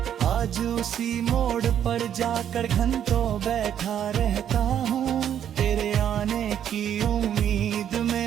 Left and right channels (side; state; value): left; quieter; 9.6 dB